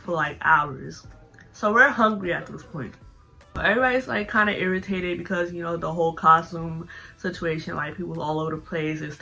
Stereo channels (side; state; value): both; identical; correlation 1.00